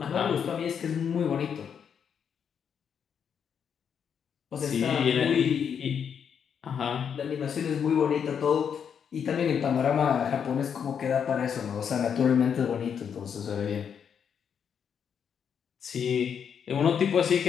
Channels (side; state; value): right; quieter; 7.5 dB